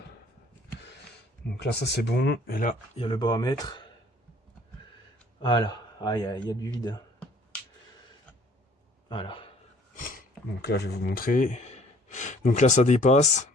Donc là, ça c'est bon. Et là, il y a le bas à mettre. Voilà. Ah, il y a du vide. Voilà. Donc là, je vais vous montrer. Donc là, ça dépasse.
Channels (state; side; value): normal; both; correlation 0.56